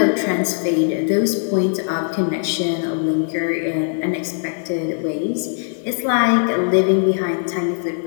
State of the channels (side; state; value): right; silent; 66 dB below the other